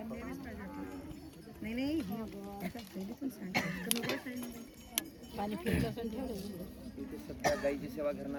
सध्या गाईची सेवा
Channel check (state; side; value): identical; both; correlation 1.00